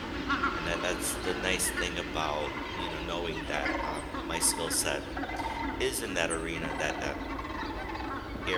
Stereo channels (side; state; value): both; identical; correlation 1.00